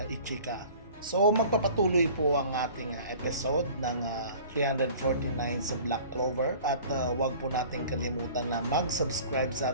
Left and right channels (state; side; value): inverted; both; correlation -0.46